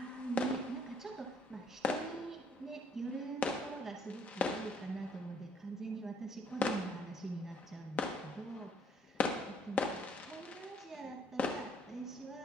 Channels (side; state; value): both; normal; correlation 0.63